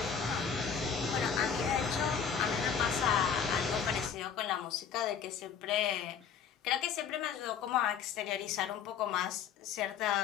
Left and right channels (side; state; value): right; quieter; 7.2 dB